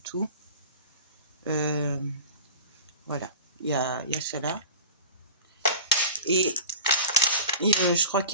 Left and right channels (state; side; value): inverted; both; correlation -0.34